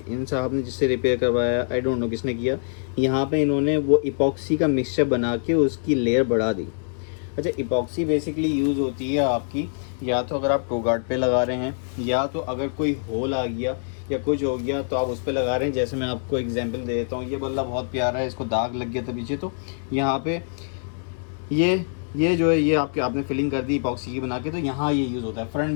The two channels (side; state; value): right; silent; 62 dB below the other